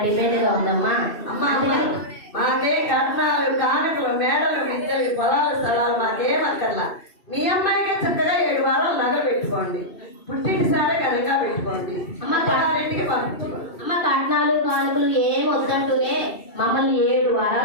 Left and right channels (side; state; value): right; late; 2.7 ms